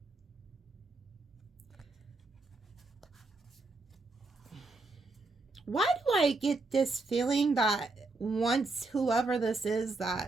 Why do I get this feeling that once whoever this is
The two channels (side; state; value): left; quieter; 3.4 dB